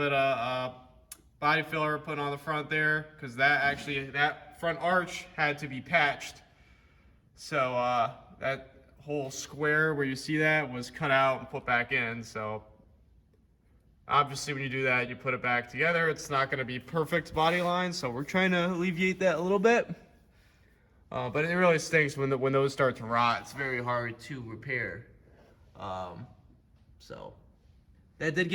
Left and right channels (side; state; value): both; identical; correlation 1.00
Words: of body filler put on the front there, because that front arch had to be patched. So that whole square where you see that was cut out and put back in. So obviously, when you do that, you put it back together. It's not going to be perfect body line, so we're trying to alleviate that a little bit. But it really stinks when those start to rot. It's very hard to repair. So that did